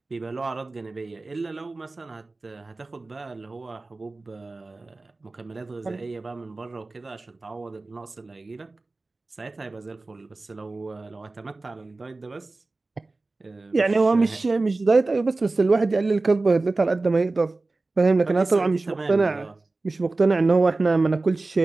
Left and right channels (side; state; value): left; quieter; 3.3 dB